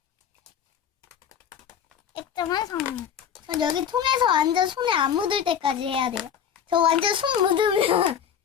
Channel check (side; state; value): right; quieter; 8.5 dB